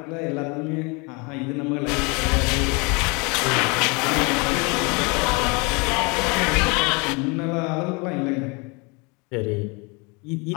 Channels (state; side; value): quieter; right; 29.7 dB